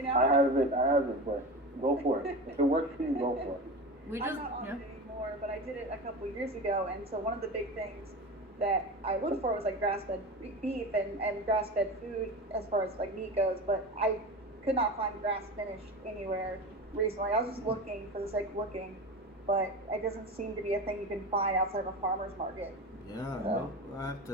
now. I haven't, but go for it. If it works for you, go for it. We just I'm not on it anymore, but I did it a couple years ago, and so one of the big things that I looked for was like grass-fed beef and grass-fed food as far as like meat goes, but I could not find grass-finished anywhere recently. I was just looking for the sake of looking, but it doesn't seem to be a thing you can find outside of a farmer's market. Yeah, well, I have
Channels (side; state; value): both; normal; correlation 0.27